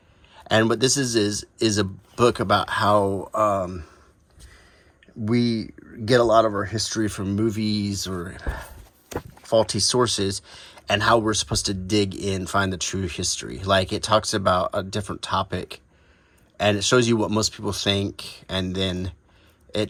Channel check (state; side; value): identical; both; correlation 1.00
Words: And what this is a book about how we get a lot of our history from movies or faulty sources, and how we're supposed to dig in, find the true history. Like, it talks about a different topic, and it shows you what most people think, and then it